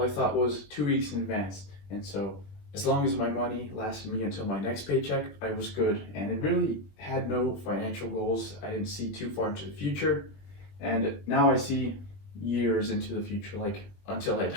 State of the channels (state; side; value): late; right; 20 ms